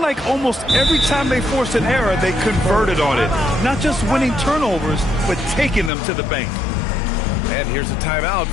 almost every time they forced an error, they converted on it. Not just winning turnovers, but taking them to the bank. And here's a timeout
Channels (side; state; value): right; drops out; at 5.9 s